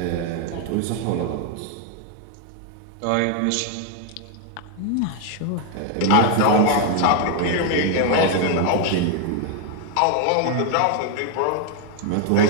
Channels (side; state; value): both; different; correlation 0.01